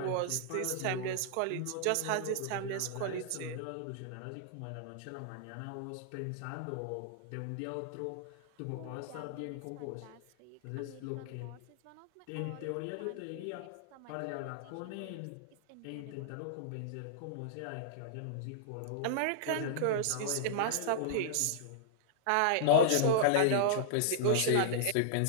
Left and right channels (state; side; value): different; both; correlation -0.01